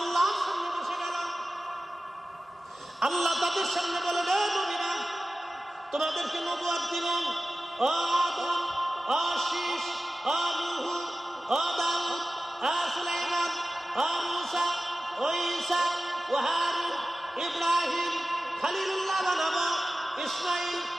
সামনে বসে গেল। আল্লাহ তাদের সামনে বলে, হে নবীরা তোমাদেরকে নবুয়ত দিলাম। ও আদম, ও শীস, ও নূহ, ও দাউদ, ও সুলাইমান, ও মূসা, ও ঈসা, ও হারুন, ইব্রাহিম খলিলুল্লাহ বানাবো, ইসমাঈল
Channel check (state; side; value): normal; both; correlation 0.95